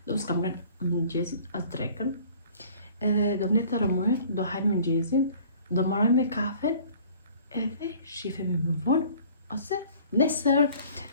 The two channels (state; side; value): inverted; both; correlation -0.51